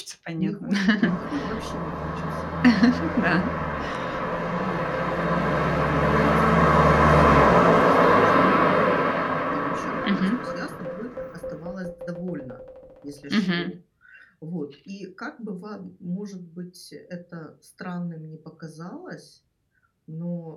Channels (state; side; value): identical; both; correlation 1.00